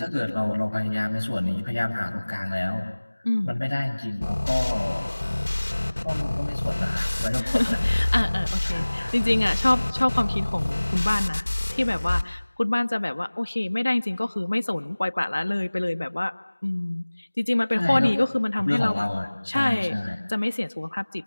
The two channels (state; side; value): inverted; both; correlation -1.00